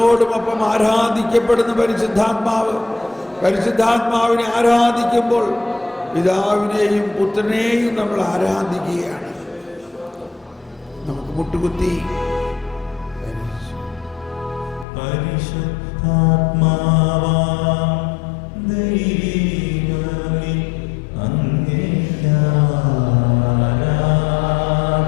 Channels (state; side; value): drops out; right; at 14.9 s